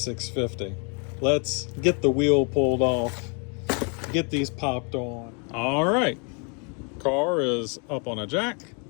Let's get the wheel pulled off, get these popped on. All right, car is up on a jack.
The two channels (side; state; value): right; quieter; 35.8 dB